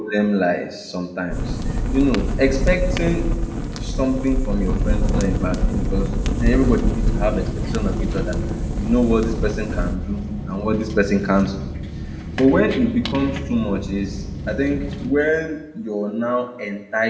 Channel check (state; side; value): identical; both; correlation 1.00